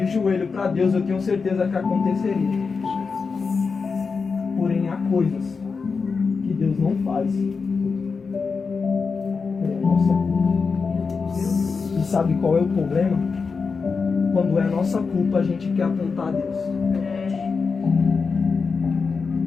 joelho para Deus, eu tenho certeza que aconteceria. Porém, há coisas que Deus não faz. Nossa. E sabe qual é o problema? Quando é nossa culpa, a gente quer apontar a Deus.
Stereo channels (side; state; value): right; quieter; 4.9 dB